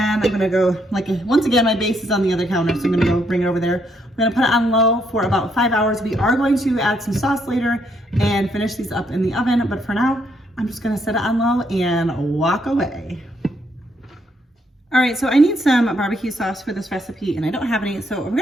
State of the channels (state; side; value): normal; both; correlation 0.74